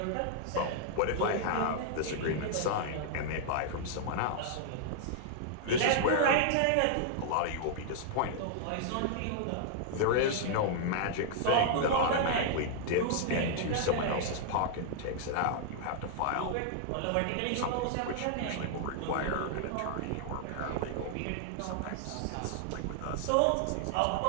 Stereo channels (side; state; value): both; different; correlation -0.01